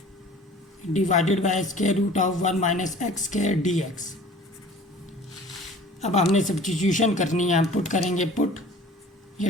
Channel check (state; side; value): normal; both; correlation 0.46